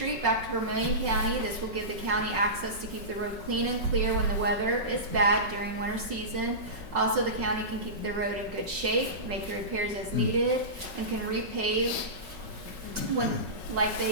back to Vermilion County. This will give the county access to keep the road clean and clear when the weather is bad during winter season. Also, the county can keep the road in good shape, make the repairs as needed, and can repave when, like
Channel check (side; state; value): left; late; 5.4 ms